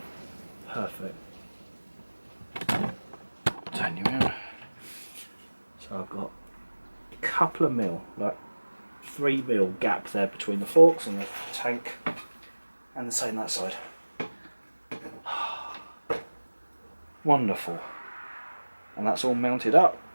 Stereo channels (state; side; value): inverted; both; correlation -1.00